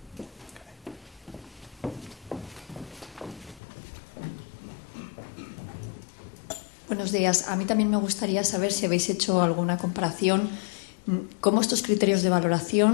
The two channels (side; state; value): right; drops out; at 3.6 s